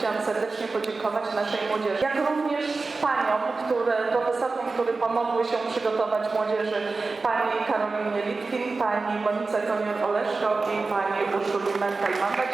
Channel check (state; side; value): quieter; left; 3.9 dB